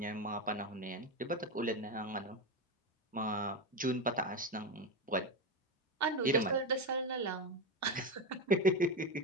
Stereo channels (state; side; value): normal; both; correlation 0.16